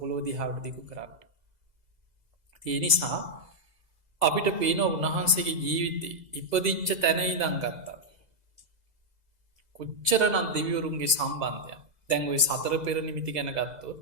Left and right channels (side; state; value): left; late; 2.0 ms